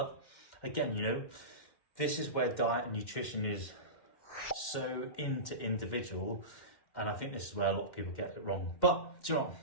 again, this is where diet and nutrition is so individual, and I think this is where a lot of people get it wrong. But do you know what?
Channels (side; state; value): right; late; 2.1 ms